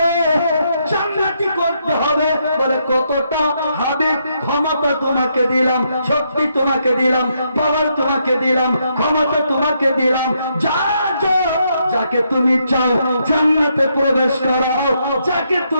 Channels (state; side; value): inverted; both; correlation -0.77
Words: জান্নাতি করতে হবে। বলে কতটা? হাবিব ক্ষমতা তোমাকে দিলাম, শক্তি তোমাকে দিলাম, পাওয়ার তোমাকে দিলাম, ক্ষমতা তোমাকে দিলাম, যা যাকে তুমি চাও জান্নাতে প্রবেশ করাও, যাকে